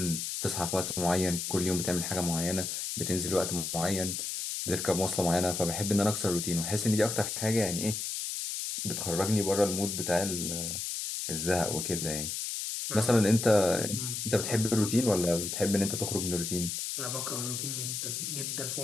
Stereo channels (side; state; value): left; noise; hiss, 3 dB below the sound